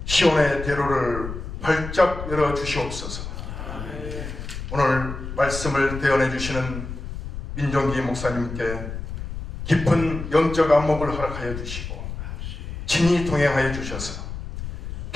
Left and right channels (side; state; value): left; noise; rumble, 8 dB below the sound